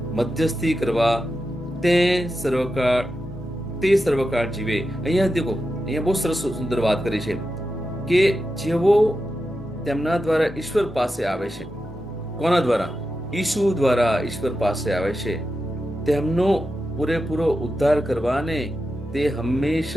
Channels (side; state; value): both; normal; correlation 0.90